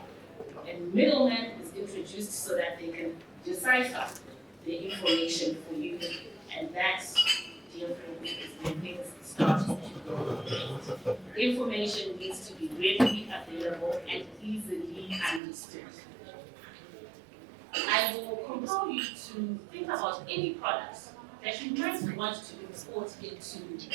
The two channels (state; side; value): drops out; left; at 15.4 s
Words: a middleman is introduced so that they can decipher the information for you. And that's the is where things start to go. Information needs to be readily available and easily understood. I will compel you to think about any product that you might want to export into